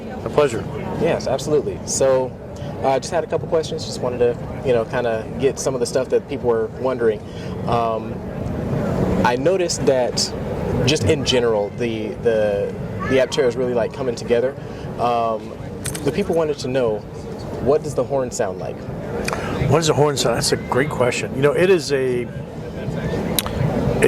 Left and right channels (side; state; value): both; identical; correlation 1.00